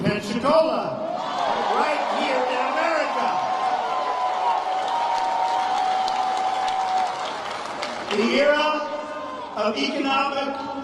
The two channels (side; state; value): both; identical; correlation 1.00